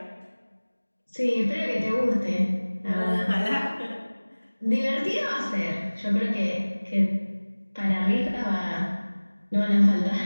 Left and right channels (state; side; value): inverted; both; correlation -1.00